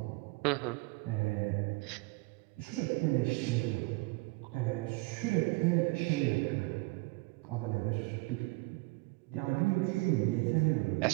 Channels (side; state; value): left; quieter; 25.4 dB